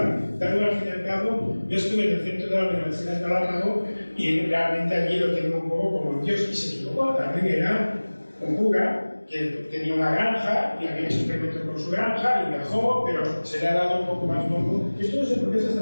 Darwin, al fin y al cabo, yo estuve en el centro de la Universidad de Galápagos y realmente allí lo tenía un poco como un dios y se equivocó. Darwin era un cura que tenía una granja y había hecho experimentos con su granja y viajó, pero se le ha dado un poco más bombo. Esto no sé por qué se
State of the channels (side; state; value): both; inverted; correlation -1.00